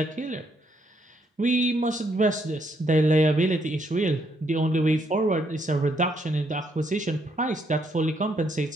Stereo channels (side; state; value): both; normal; correlation 0.73